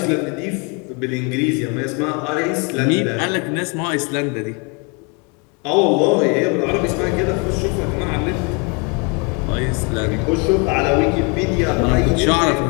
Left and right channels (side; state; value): right; quieter; 31.8 dB